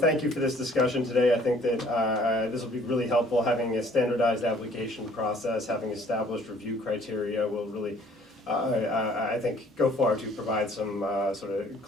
thank you for this discussion today. I think that this will be really helpful. Having a standardized application process, having established review criteria will really, I think, go far to provide some sort of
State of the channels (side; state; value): both; normal; correlation 0.58